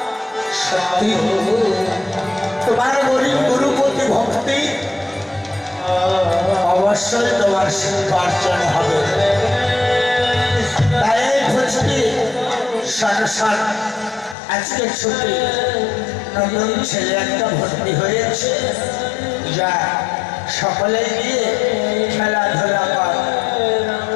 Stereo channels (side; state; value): right; drops out; at 14.4 s